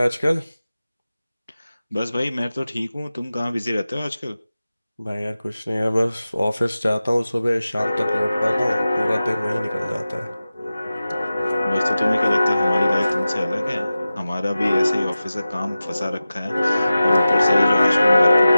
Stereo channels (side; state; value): both; inverted; correlation -0.95